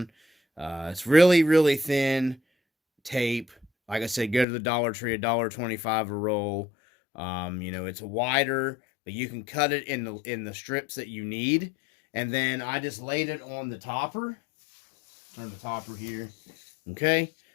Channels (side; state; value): right; drops out; at 4.5 s